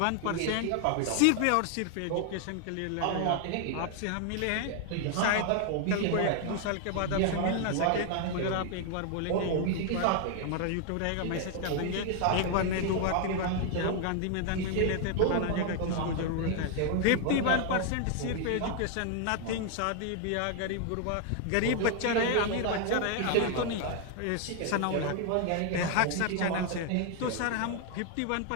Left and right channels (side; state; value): both; different; correlation 0.00